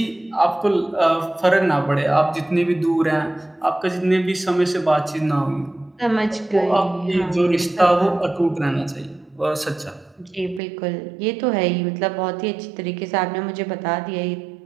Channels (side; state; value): left; drops out; at 10.6 s